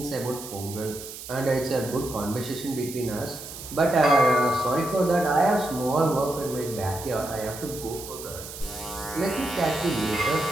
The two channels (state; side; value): noise; right; hiss, 12 dB below the sound